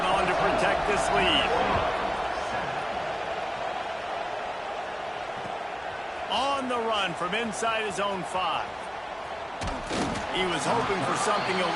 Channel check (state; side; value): identical; both; correlation 1.00